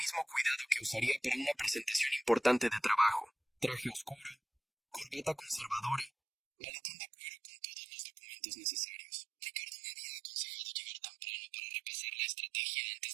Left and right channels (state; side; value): drops out; left; at 6.1 s